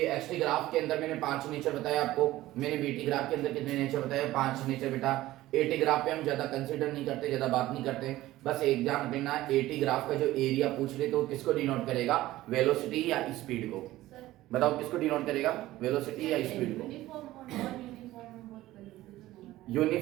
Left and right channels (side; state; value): left; quieter; 16.2 dB